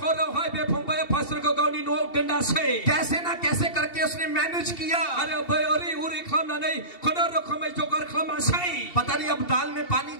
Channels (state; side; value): late; right; 2.7 ms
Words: कैसे ना कैसे करके उसने मैनेज किया। पता नहीं अब दाल में पानी